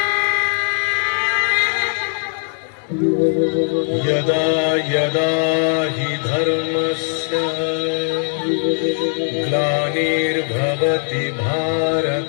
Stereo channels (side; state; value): right; silent; 66 dB below the other